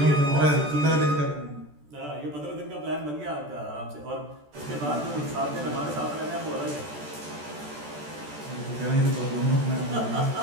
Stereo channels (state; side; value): late; left; 14 ms